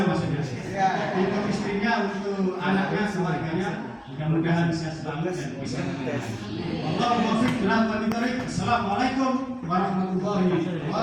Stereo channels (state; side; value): identical; both; correlation 1.00